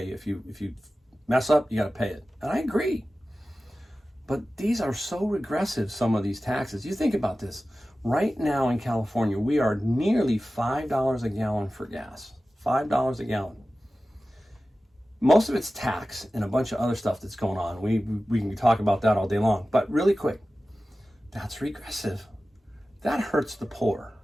If you mess up, you got to pay it. And I agree. But these are so regressive, some of these taxes. You think about this. Right now in California, we are nearly $5 a gallon for gas. $5 a gallon. Most of it's tax and a bunch of other stuff that's going on. We can talk about that all day long. But really quick, that's regressive. That hurts the poor.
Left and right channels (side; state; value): both; normal; correlation 0.95